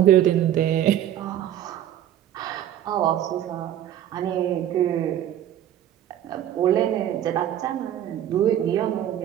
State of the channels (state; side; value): quieter; left; 11.2 dB